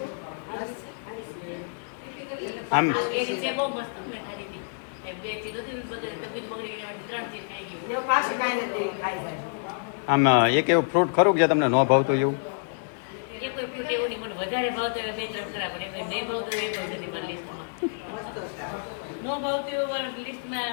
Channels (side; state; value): right; silent; digital silence